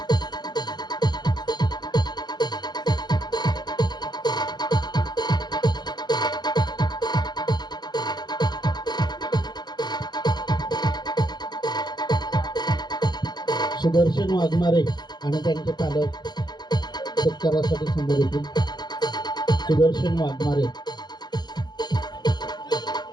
सुदर्शन वाघमारे आणि त्यांचे पालक सत्कारासाठी समोर येतील. सुदर्शन वाघमारे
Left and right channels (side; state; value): right; late; 0.21 ms